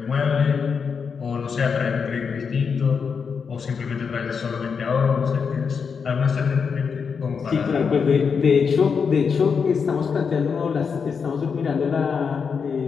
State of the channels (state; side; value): quieter; right; 6.0 dB